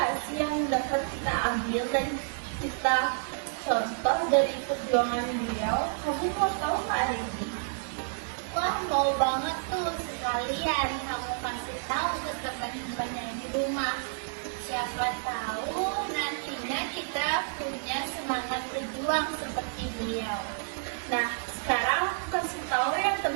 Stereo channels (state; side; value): silent; left; digital silence